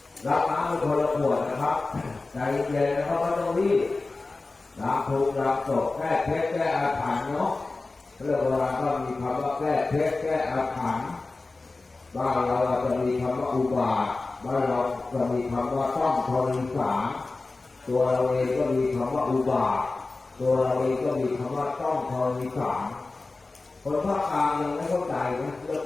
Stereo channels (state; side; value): quieter; right; 3.5 dB